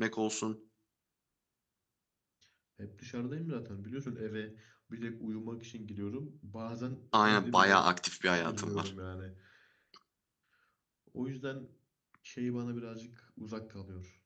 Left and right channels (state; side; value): identical; both; correlation 1.00